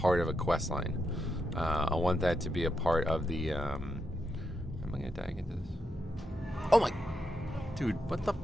of a quest line. I want that to be a part of the, am I gonna die into this? Oh my, dude, what the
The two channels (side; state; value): both; normal; correlation 0.83